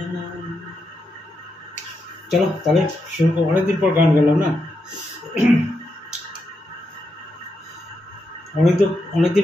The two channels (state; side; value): normal; both; correlation 0.84